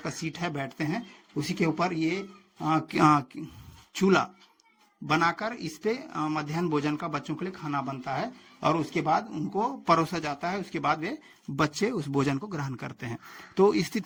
का सीट है, बैठते हैं, उसी के ऊपर ये चूल्हा बनाकर इस पे मध्याह्न भोजन का बच्चों के लिए खाना बनता है और उसके बाद उनको परोसा जाता है। उसके बाद वे बच्चे उस भोजन को ग्रहण करते हैं। तो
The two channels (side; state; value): both; identical; correlation 1.00